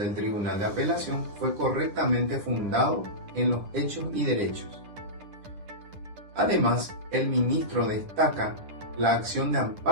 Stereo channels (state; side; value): late; left; 9.9 ms